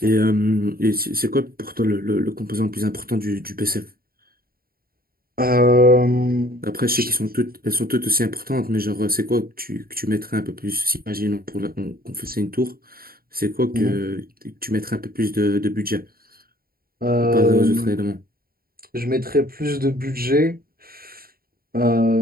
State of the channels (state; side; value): late; left; 0.43 ms